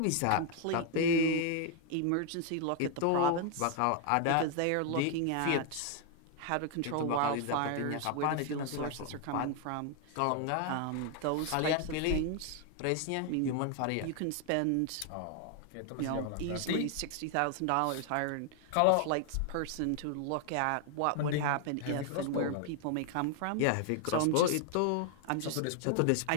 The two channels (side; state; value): both; different; correlation 0.00